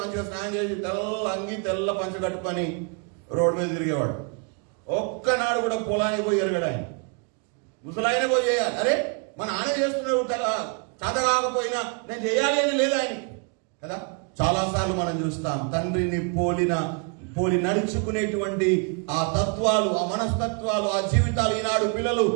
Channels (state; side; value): quieter; left; 37.9 dB